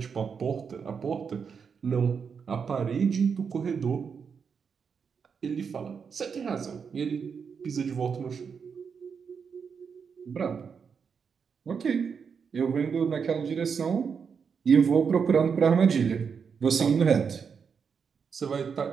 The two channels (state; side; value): quieter; left; 6.3 dB